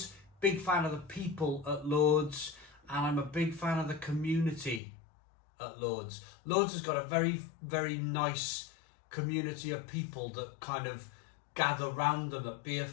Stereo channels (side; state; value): right; drops out; at 4.8 s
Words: Big fan of the people at Lord's. And I'm a big fan of the community at Lord's. Lord's has got a very, very nice community of people that kind of gather round them at beer